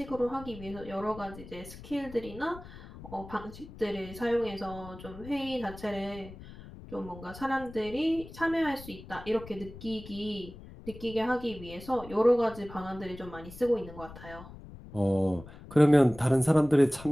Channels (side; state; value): left; noise; rumble, 16 dB below the sound